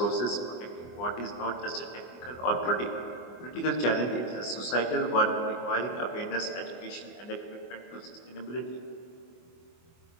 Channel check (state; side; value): late; right; 24 ms